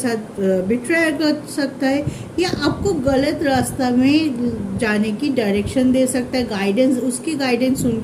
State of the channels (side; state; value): both; identical; correlation 1.00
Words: बिट्रेयर कर सकता है, या आपको गलत रास्ता में जाने की डायरेक्शन दे सकता है, उसकी गाइडेंस सुन